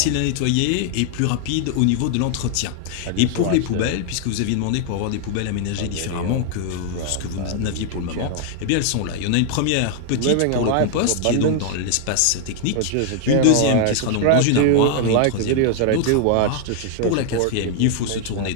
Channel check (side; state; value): both; different; correlation 0.00